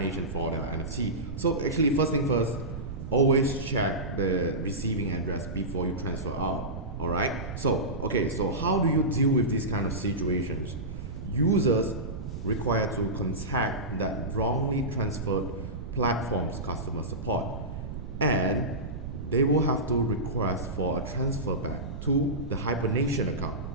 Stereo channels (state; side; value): noise; right; rumble, 8 dB below the sound